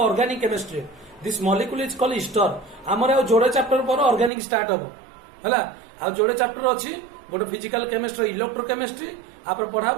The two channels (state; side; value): drops out; left; at 4.3 s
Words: organic chemistry this molecule is called ester हमर आ जोड़े चैप्टर पर ऑर्गेनिक स्टार्ट हबो हला आ जोड़े चैप्टर अछि गोटे फिजिकल केमिस्ट्री इलेक्ट्रोकेमिस्ट्री आप